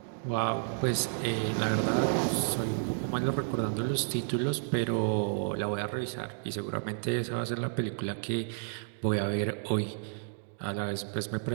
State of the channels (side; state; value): left; silent; digital silence